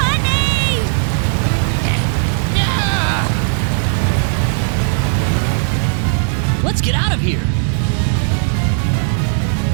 Let's get out of here!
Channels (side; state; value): left; silent; digital silence